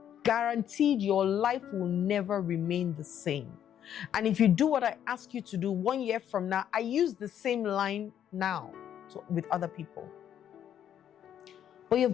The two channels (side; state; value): right; quieter; 9.9 dB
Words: guaranteed your life will never remain the same. And if you do what I ask you to do 1 year from now, I use the same line now with other people. But you've